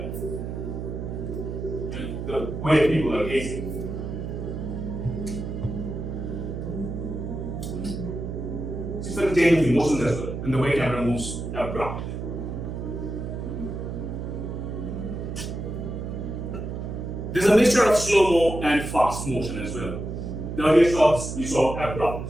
And the way people are gazing. She started changing emotions as well, and the way camera moves abrupt. There's a mixture of slow-mo and fast motion as well. The earlier shots you saw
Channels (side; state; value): right; noise; hum, 5 dB below the sound